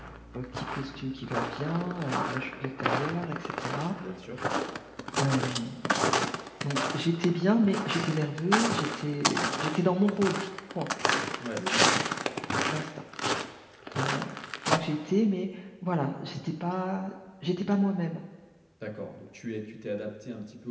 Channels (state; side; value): identical; both; correlation 1.00